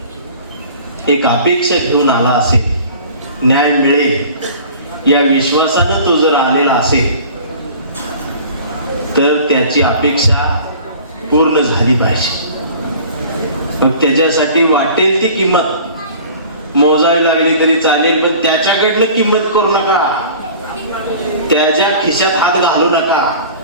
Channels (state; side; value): inverted; both; correlation -0.44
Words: एक अपेक्षा घेऊन आला असेल, न्याय मिळेल या विश्वासानं तो जर आलेला असेल, तर त्याची अपेक्षा पूर्ण झाली पाहिजे. मग त्याच्यासाठी वाटेल ती किंमत मोजावी लागली तरी चालेल, पण त्याच्याकडनं किंमत करू नका. त्याच्या खिशात हात घालू नका.